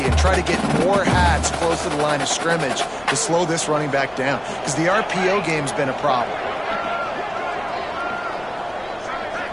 and try to get more hats close to the line of scrimmage to slow this running back down, because the RPO game's been a problem.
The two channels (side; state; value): left; noise; rumble, 25 dB below the sound